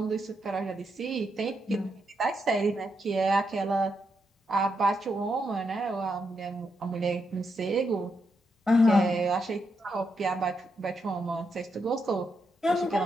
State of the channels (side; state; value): both; normal; correlation 0.82